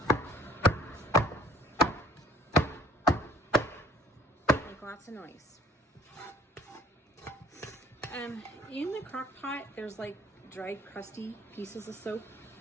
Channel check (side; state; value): both; normal; correlation 0.53